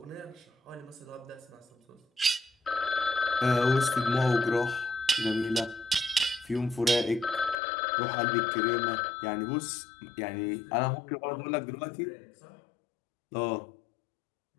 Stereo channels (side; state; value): right; drops out; at 7.6 s